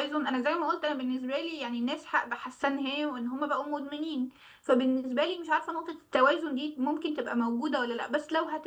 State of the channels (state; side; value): identical; both; correlation 1.00